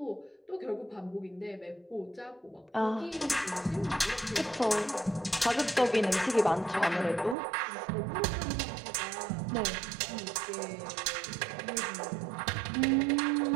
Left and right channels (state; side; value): drops out; left; at 7.4 s